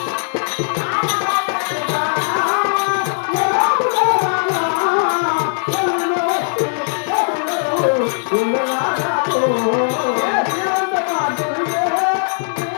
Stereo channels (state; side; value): silent; right; 57 dB below the other